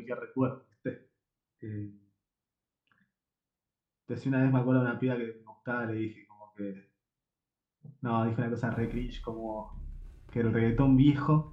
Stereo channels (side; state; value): both; identical; correlation 1.00